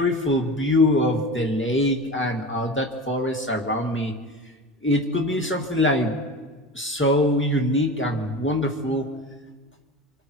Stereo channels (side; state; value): both; normal; correlation 0.31